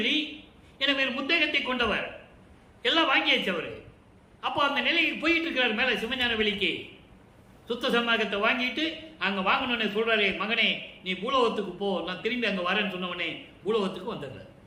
என வேறு முத்தகத்தை கொண்டவர். எல்லாம் வாங்கியாச்சு அவரு. அப்போ அந்த நிலைக்கு போயிட்டு இருக்கிறார். மேல சிவஞான வெளிக்கு சுத்த சன்மார்க்கத்தை வாங்கிட்டு அங்க வாங்கணும்னு சொல்றாரு. மகனே, நீ பூலோகத்துக்கு போ, நான் திரும்பி அங்க வரேன்னு சொன்னவனே பூலோகத்துக்கு வந்துடுறாரு.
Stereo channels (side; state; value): both; identical; correlation 1.00